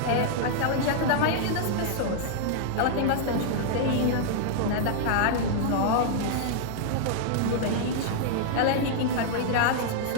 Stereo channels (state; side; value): different; both; correlation -0.01